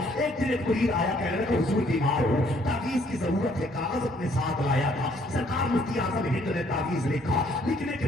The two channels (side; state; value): both; normal; correlation 0.64